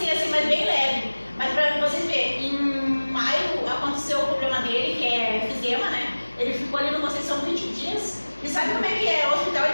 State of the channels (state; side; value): inverted; both; correlation -1.00